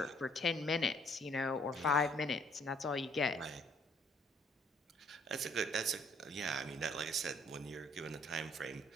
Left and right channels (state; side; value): normal; both; correlation 0.63